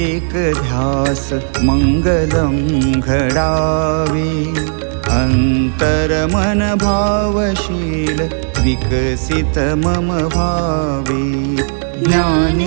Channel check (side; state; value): left; silent; digital silence